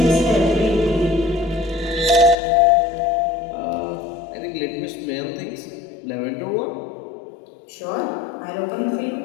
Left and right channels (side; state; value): right; drops out; at 2.4 s